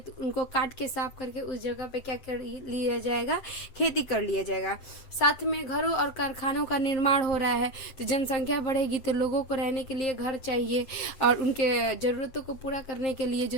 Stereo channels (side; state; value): right; late; 7.9 ms